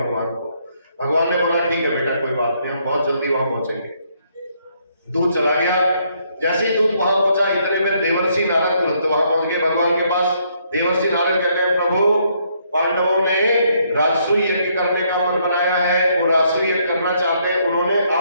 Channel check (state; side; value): inverted; both; correlation -0.71